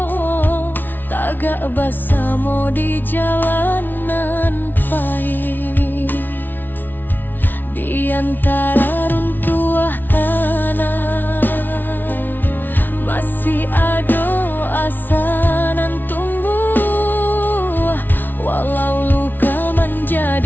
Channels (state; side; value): late; right; 0.090 ms